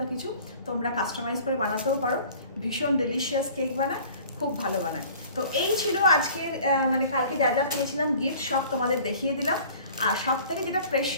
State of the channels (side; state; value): both; inverted; correlation -0.48